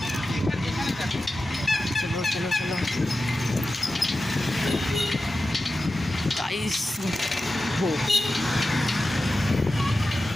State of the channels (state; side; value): normal; both; correlation 0.93